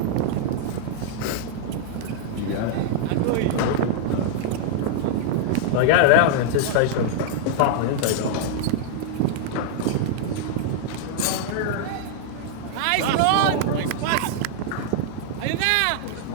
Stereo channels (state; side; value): different; both; correlation -0.01